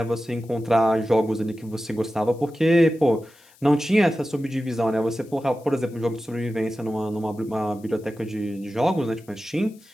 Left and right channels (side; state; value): left; noise; hiss, 28 dB below the sound